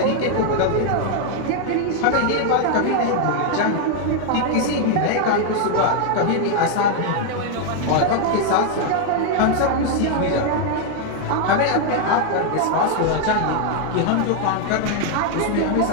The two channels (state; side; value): different; both; correlation 0.00